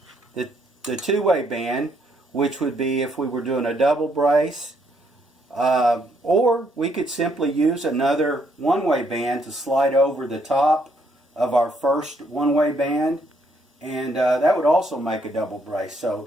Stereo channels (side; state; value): both; normal; correlation 0.71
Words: the two-way band, which would be if we were doing a double brace, or we could simply use another one-way band to slide over the top of our first one-way band, and that would also make a double brace. So